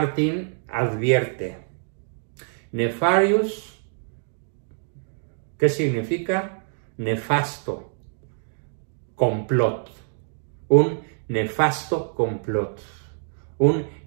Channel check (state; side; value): silent; left; digital silence